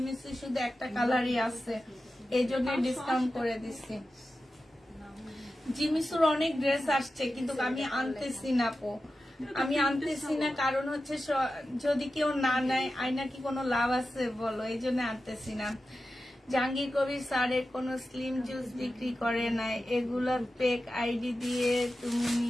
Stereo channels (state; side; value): normal; both; correlation 0.93